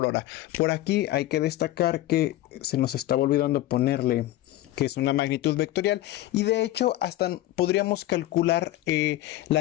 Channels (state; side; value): quieter; right; 15.2 dB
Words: hora. Por aquí hay que destacar que se nos estaba olvidando ponerle que es una magnitud vectorial, y de hecho hasta podríamos calcular